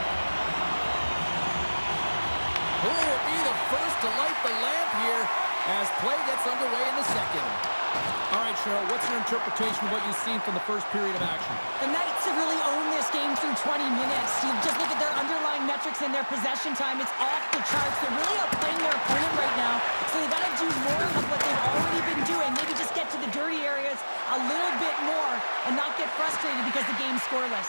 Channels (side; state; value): both; inverted; correlation -1.00